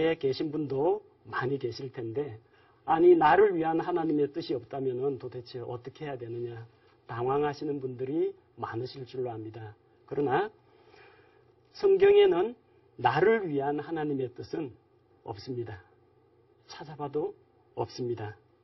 계신 분도 많이 계실 텐데, 아니 나를 위한 하나님의 뜻이 없다면 도대체 어떻게 해야 되느냐 당황하시는 분들이 많으실 줄로 압니다. 그러나 성경에는 나를 위한 하나님의 뜻은 없습니다. 찾아봐도 없습니다.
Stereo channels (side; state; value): both; identical; correlation 1.00